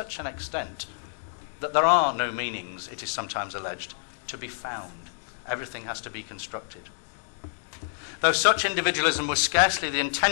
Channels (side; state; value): right; silent; digital silence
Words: an extent that there are no meanings, it is sometimes alleged, to be found. Everything has to be constructed. Though such individualism was scarcely the